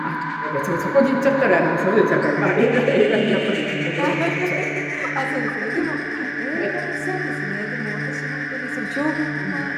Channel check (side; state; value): both; identical; correlation 1.00